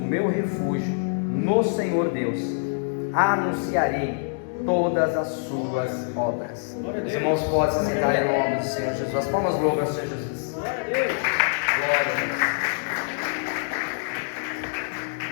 meu refúgio no Senhor Deus. Anunciarei todas as suas obras. Os irmãos podem se sentar em nome do Senhor Jesus. As palmas louvam ao Senhor Jesus. Glória a Deus. Glória a Deus.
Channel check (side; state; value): right; silent; 62 dB below the other